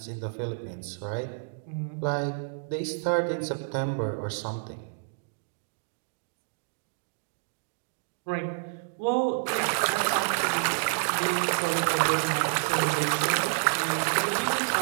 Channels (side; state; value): left; silent; digital silence